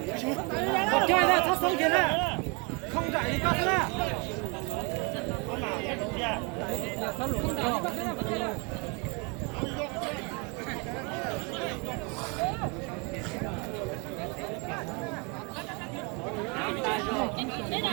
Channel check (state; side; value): quieter; left; 31.5 dB